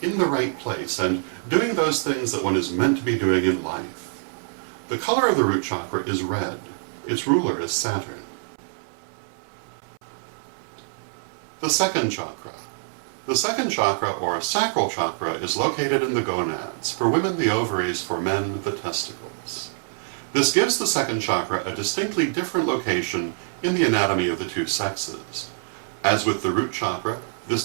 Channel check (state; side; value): silent; left; 62 dB below the other